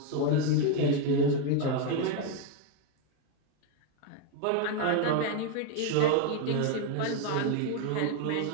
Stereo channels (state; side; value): different; both; correlation 0.02